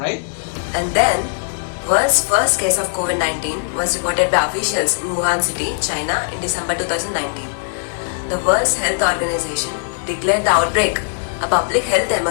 And then, world's first case of COVID-19 was reported by officials in Wuhan City, China in December 2019. The World Health Organization declared the outbreak a public health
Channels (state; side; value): silent; right; digital silence